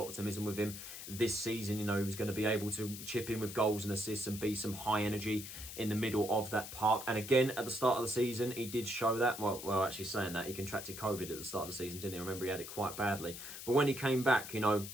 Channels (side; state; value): left; noise; hiss, 10 dB below the sound